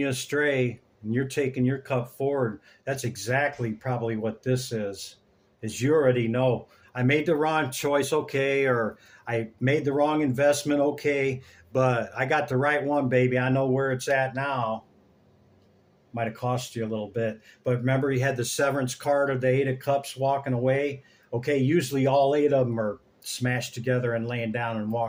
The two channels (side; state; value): both; identical; correlation 1.00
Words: astray, and you're taking your cup forward. That's exactly probably what this is you already know. I made the wrong choice, okay, or I made the wrong investment, okay, but I got the right one, baby. I know where it's at now. Might have cost you a little bit, but remember you had the severance card of the 8 of Cups walking away. Okay, usually all 8 of them are smashed together and laying down and